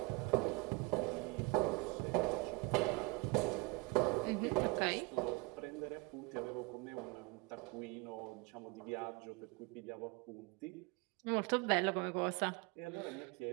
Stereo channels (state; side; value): quieter; left; 27.1 dB